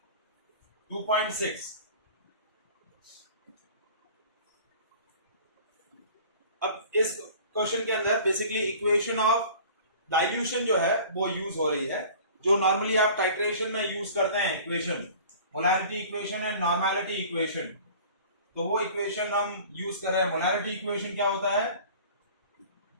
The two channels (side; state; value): both; inverted; correlation -0.45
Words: 2.6. अब इस क्वेश्चन के अंदर बेसिकली इक्वेशन ऑफ डाइल्यूशन जो है वो यूज हो रही है, जो नॉर्मली आप टाइट्रेशन में यूज करते हैं equation, molarity equation and normality equation. तो वो इक्वेशन हम यूज कर रहे हैं. मोलैरिटी इक्वेशन क्या होता है?